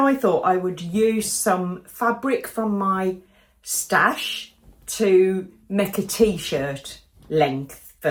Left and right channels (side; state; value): both; identical; correlation 1.00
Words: thought I would use some fabric from my stash to make a t-shirt length